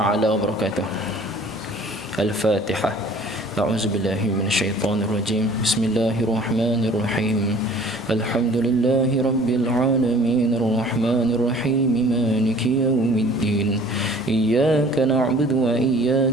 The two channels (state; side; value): normal; both; correlation 0.50